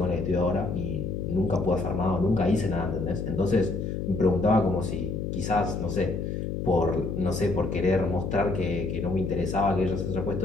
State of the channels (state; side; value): noise; left; hum, 3 dB below the sound